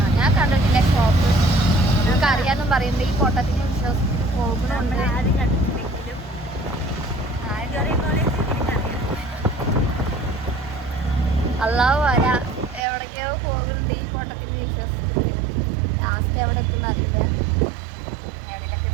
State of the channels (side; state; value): left; drops out; at 12.8 s